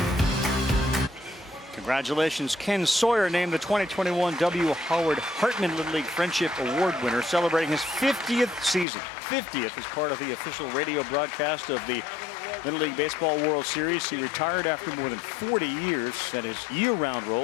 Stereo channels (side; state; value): right; drops out; at 8.8 s